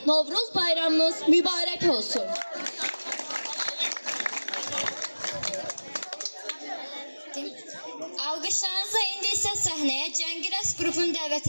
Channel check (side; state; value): both; inverted; correlation -1.00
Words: Novruz bayramınız mübarək olsun. Alqışlarınızla indi isə səhnəyə Cəngirəs qrupunu dəvət